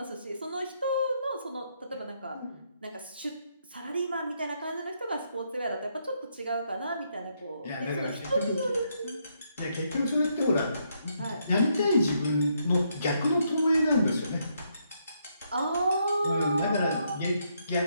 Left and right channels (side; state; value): both; inverted; correlation -0.76